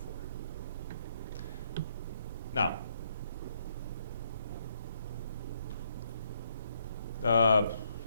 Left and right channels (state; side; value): inverted; both; correlation -0.73